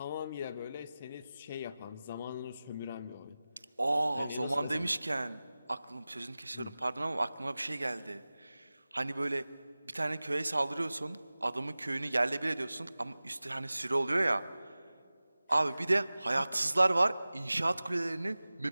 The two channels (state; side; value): inverted; both; correlation -0.97